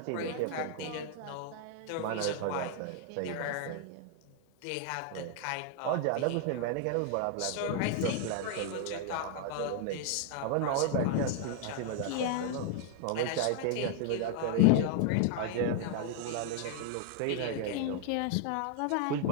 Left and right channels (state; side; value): different; both; correlation 0.00